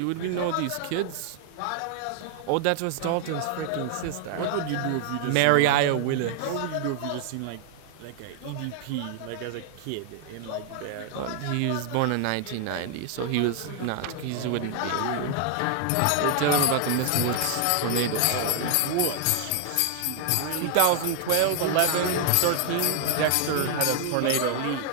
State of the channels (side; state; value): both; different; correlation 0.00